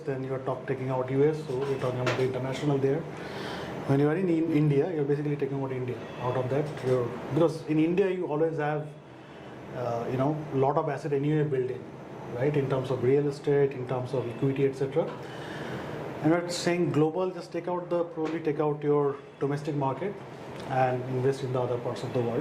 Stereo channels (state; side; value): identical; both; correlation 1.00